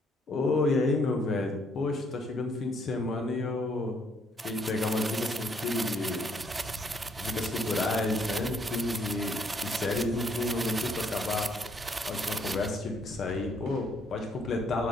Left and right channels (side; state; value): both; normal; correlation 0.69